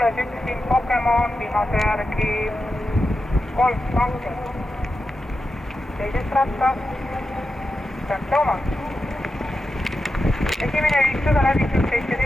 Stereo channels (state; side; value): normal; both; correlation 0.90